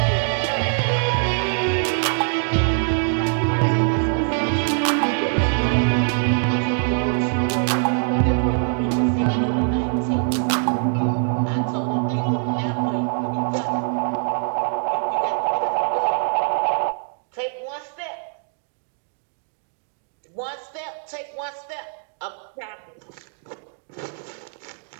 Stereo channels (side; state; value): left; silent; digital silence